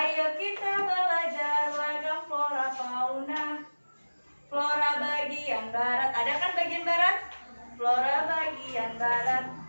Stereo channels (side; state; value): both; inverted; correlation -1.00